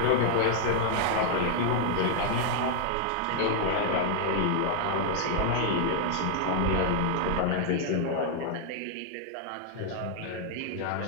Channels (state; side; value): different; both; correlation 0.00